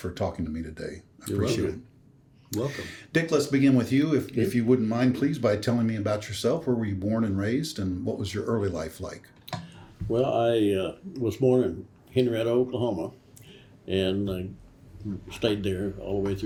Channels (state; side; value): identical; both; correlation 1.00